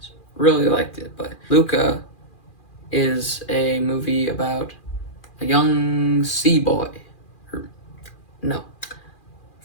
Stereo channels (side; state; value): right; late; 2.4 ms